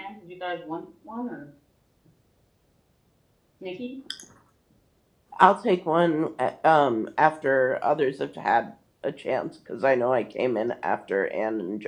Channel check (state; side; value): identical; both; correlation 1.00